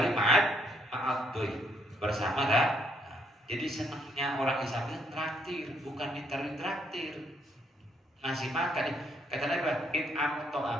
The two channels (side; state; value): both; normal; correlation 0.71